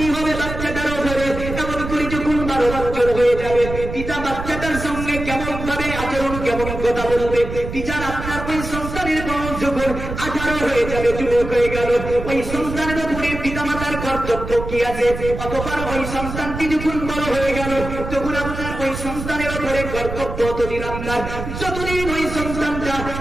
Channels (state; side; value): noise; right; rumble, 7 dB below the sound